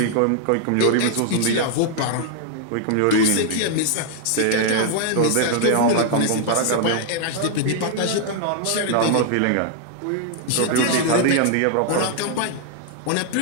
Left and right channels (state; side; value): different; both; correlation 0.00